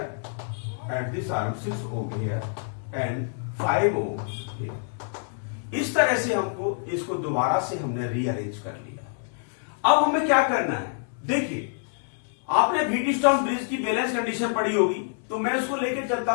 and this arm 6 ohm here, and 5 ohm here. इस तरह से हमको इसको दोबारा से हमने रीअरेंज कर लिया। अब हमें क्या करना है, देखिए आपने व्हीटस्टोन ब्रिज की बैलेंस कंडीशन पढ़ी होगी, तो मैं इसको लेके चलता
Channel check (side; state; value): right; silent; 61 dB below the other